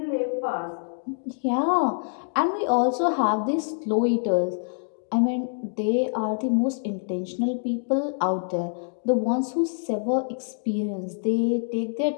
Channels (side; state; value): right; silent; digital silence